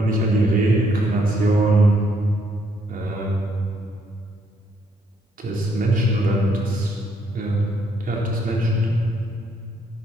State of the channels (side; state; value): both; normal; correlation 0.71